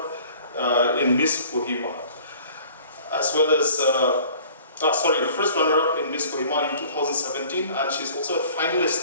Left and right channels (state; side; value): inverted; both; correlation -0.49